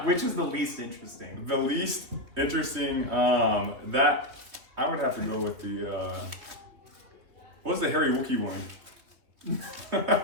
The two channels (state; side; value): late; left; 3.3 ms